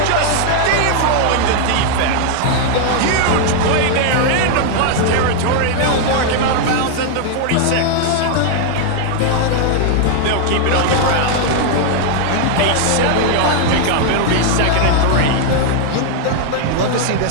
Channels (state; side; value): different; both; correlation 0.00